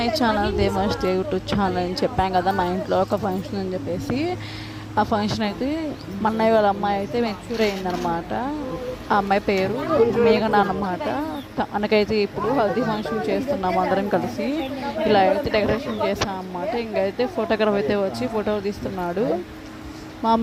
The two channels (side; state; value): both; identical; correlation 1.00